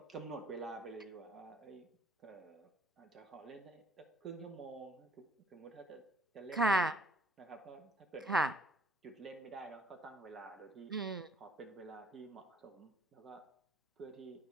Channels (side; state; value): both; normal; correlation 0.61